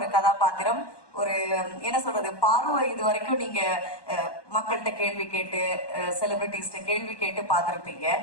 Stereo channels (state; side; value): late; right; 1.1 ms